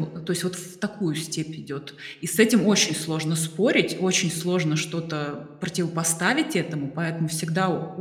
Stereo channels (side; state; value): both; identical; correlation 1.00